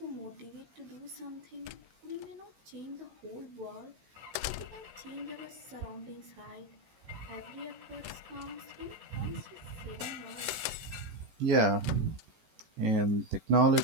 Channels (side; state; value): left; late; 14 ms